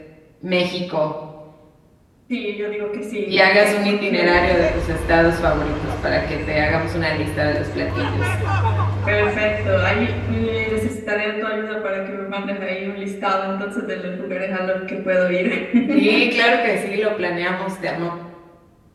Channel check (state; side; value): identical; both; correlation 1.00